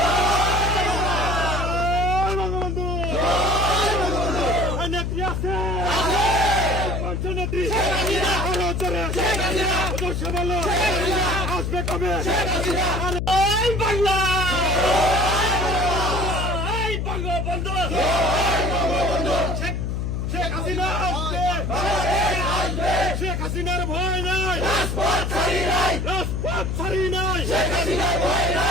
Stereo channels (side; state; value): left; noise; hum, 1 dB below the sound